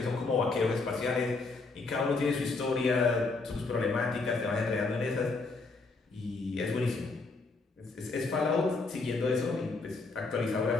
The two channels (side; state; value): right; quieter; 3.8 dB